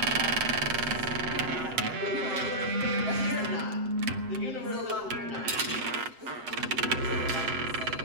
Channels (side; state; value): left; late; 7.7 ms